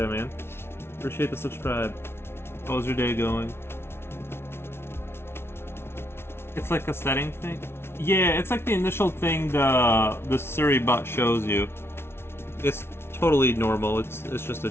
man. Appreciate the subscribe. How's your day going? It's like a setting thing? Yeah, it's like the initial thing the Siri bot shows you. It's totally normal. It's just a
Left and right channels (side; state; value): right; late; 0.12 ms